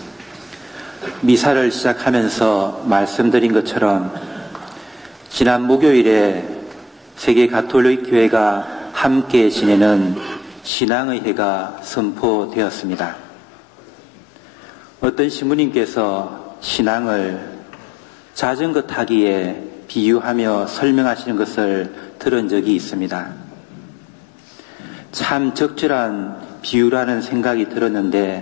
미사를 시작하면서 말씀드린 것처럼 지난 목요일에 세계 가톨릭 교회가 함께 지내는 신앙의 해가 선포되었습니다. 어떤 신부님께서 신앙을 자전거 타기에 비유하며 설명하시는 것을 들은 적이 있습니다. 참 적절한 비유라는 생각이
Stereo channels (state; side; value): drops out; right; at 10.7 s